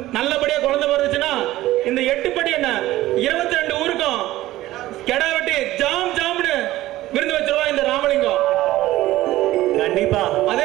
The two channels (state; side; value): quieter; left; 16.0 dB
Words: நல்லபடியா குழந்தை பிறந்துச்சுன்னா இந்த 8 படி என்ன 22 ஊருக்கும் கெடா வெட்டி ஜாம் ஜாம்னு விருந்து வச்சிருவா இந்த ராமலிங்கம். கண்டிப்பா. அதே